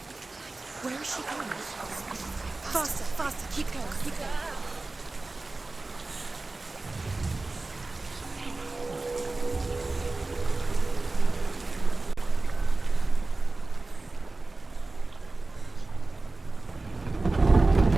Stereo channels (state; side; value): quieter; left; 3.3 dB